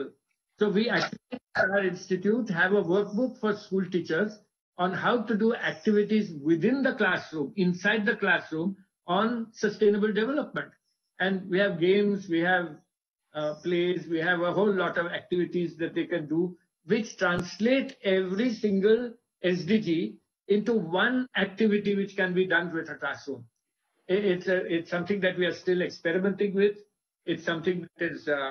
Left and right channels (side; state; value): both; identical; correlation 1.00